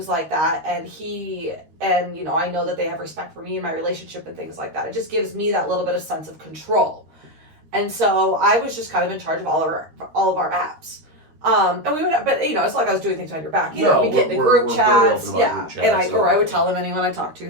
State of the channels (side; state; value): left; late; 13 ms